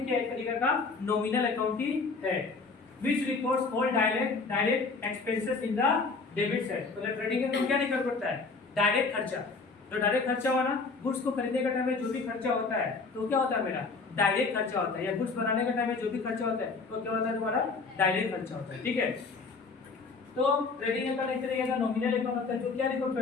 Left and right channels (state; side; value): quieter; right; 4.3 dB